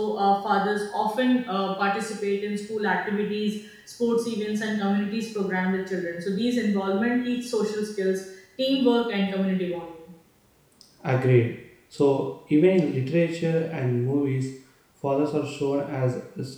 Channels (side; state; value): both; identical; correlation 1.00